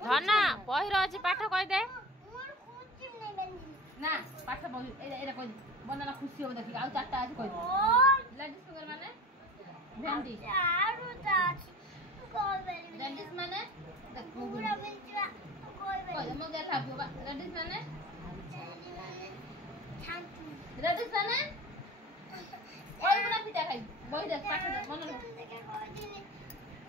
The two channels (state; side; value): normal; both; correlation 0.36